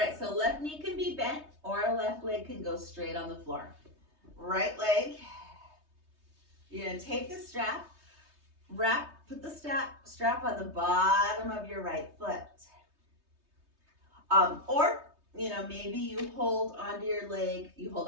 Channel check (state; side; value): late; left; 3.2 ms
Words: so left knee can be bent or left leg can go straight on the floor. Right leg, you're going to take the strap, put the strap on the bottom of your right foot. Or maybe you hold onto your leg, you hold